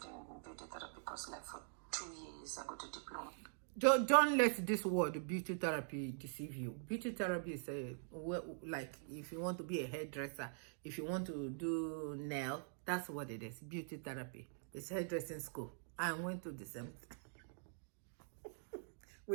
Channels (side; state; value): left; silent; digital silence